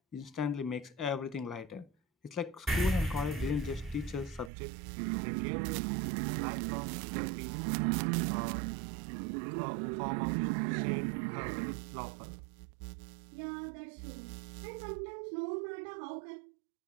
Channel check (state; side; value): drops out; left; at 4.5 s